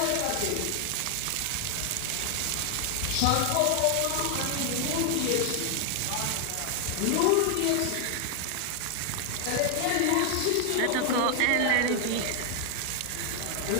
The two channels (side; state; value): both; different; correlation 0.00